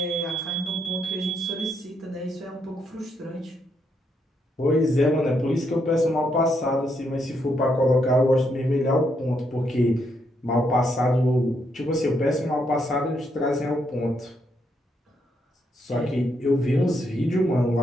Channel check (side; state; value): both; normal; correlation 0.77